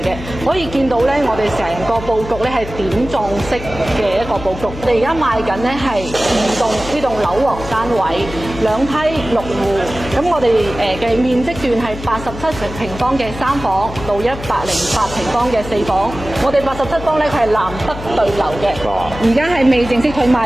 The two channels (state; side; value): noise; left; hum, 11 dB below the sound